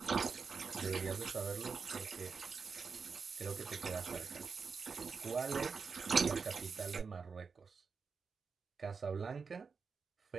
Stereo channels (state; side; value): quieter; left; 5.3 dB